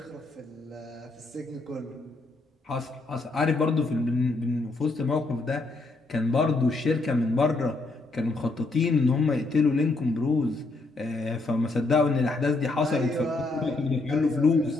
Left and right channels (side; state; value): right; quieter; 3.3 dB